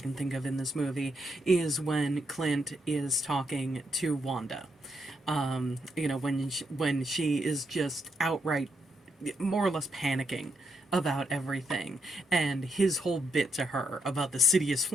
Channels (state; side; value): normal; both; correlation 0.78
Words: think of in this movie is when Clint is talking to Wanda. When she is just outright more or less panicking about everything, and his whole bit to her about the city is